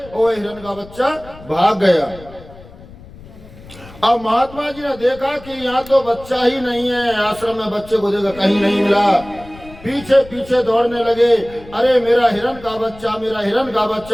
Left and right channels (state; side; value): noise; left; rumble, 19 dB below the sound